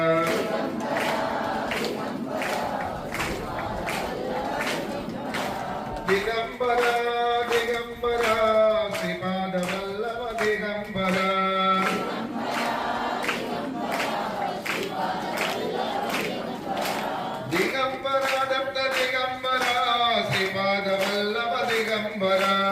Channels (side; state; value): both; identical; correlation 1.00